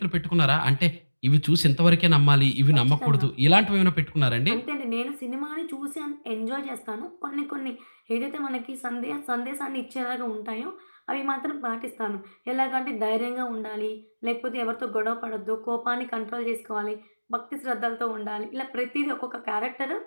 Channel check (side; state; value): both; inverted; correlation -1.00